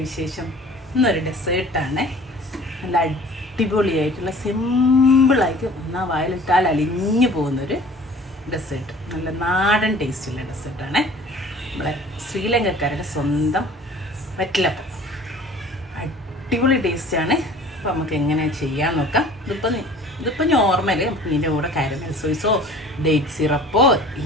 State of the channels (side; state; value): both; normal; correlation 0.47